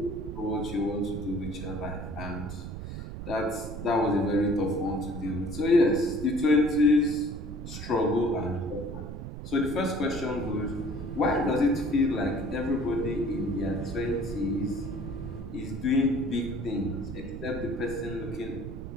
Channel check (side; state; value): right; noise; rumble, 8 dB below the sound